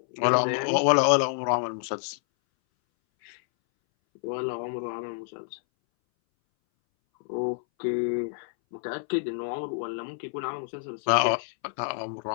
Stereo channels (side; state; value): right; silent; 59 dB below the other